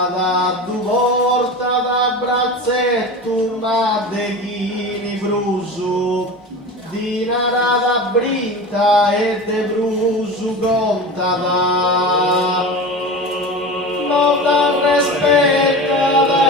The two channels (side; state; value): both; normal; correlation 0.30